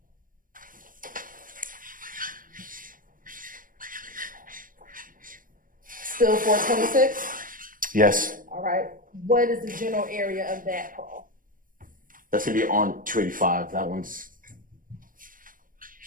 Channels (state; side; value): late; left; 0.40 ms